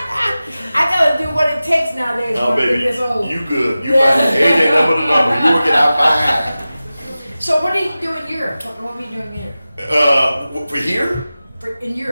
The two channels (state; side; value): inverted; both; correlation -0.95